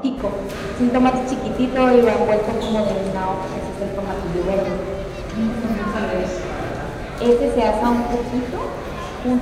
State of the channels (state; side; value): identical; both; correlation 1.00